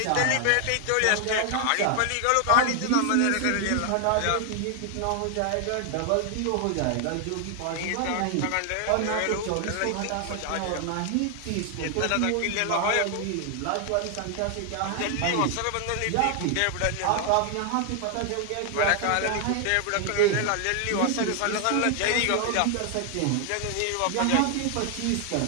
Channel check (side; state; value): both; different; correlation 0.00